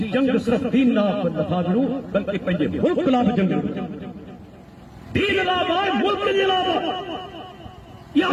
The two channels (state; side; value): identical; both; correlation 1.00